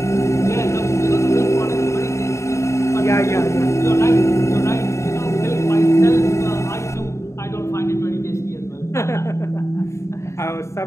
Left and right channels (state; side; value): late; right; 0.14 ms